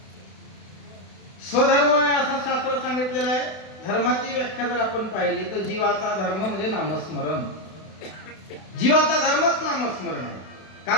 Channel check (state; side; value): late; right; 32 ms